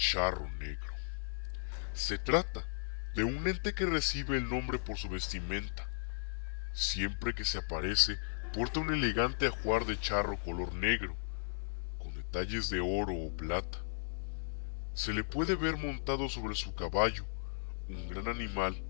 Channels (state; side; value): silent; right; digital silence